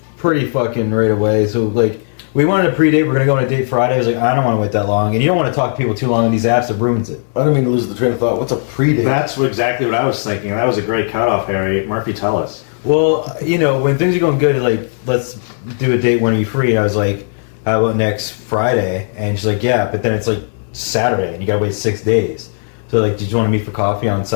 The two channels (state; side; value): silent; right; digital silence